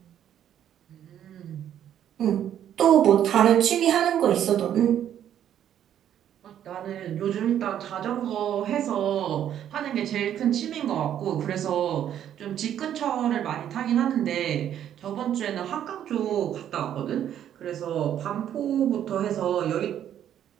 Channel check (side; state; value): left; quieter; 10.3 dB